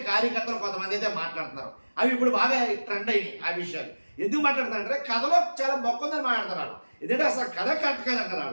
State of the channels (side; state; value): both; inverted; correlation -1.00